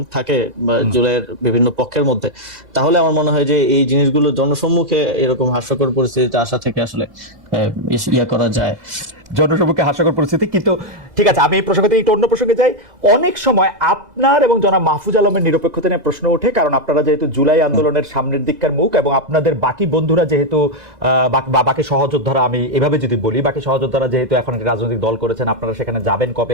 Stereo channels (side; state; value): left; late; 2.0 ms